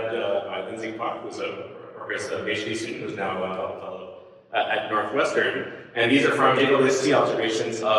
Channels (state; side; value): identical; both; correlation 1.00